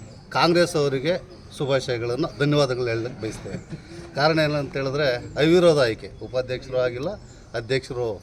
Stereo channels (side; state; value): both; identical; correlation 1.00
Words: ಕಾಂಗ್ರೆಸ್ ಅವರಿಗೆ ಶುಭಾಶಯಗಳನ್ನು ಧನ್ಯವಾದಗಳು ಹೇಳಲಿಕ್ಕೆ ಬಯಸ್ತೇವೆ. ಕಾರಣ ಏನಂತ ಹೇಳಿದ್ರೆ ಅವಿರೋಧ ಆಯ್ಕೆ, ಉಪಾಧ್ಯಕ್ಷರು ಆಗಿಲ್ಲ, ಅಧ್ಯಕ್ಷರು